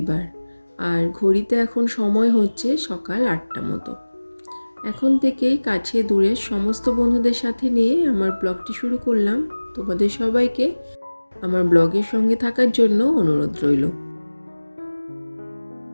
আর ঘড়িতে এখন সময় হচ্ছে সকাল 8টা মতো। এখন থেকেই কাছে দূরে সমস্ত বন্ধুদের সাথে নিয়ে আমার ব্লগটি শুরু করলাম। তোমাদের সবাইকে আমার ব্লগের সঙ্গে থাকার জন্য অনুরোধ রইল।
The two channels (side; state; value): both; inverted; correlation -1.00